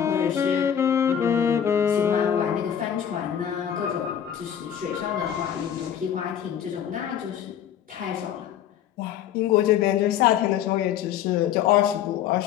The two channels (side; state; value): right; quieter; 9.4 dB